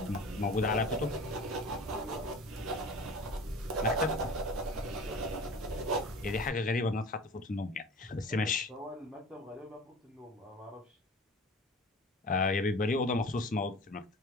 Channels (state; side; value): normal; both; correlation 0.39